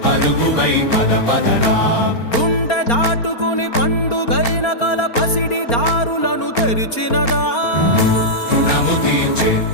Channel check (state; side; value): late; right; 4.3 ms